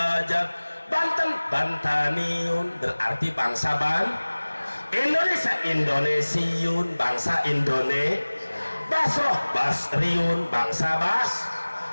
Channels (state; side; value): inverted; both; correlation -1.00